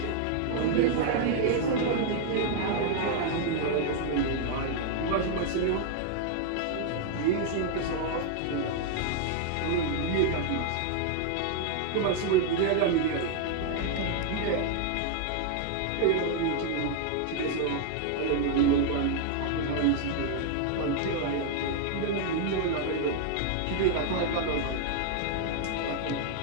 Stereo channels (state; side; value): different; both; correlation 0.00